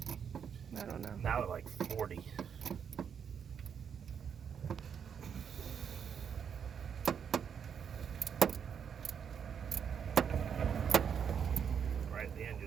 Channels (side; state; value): left; quieter; 7.5 dB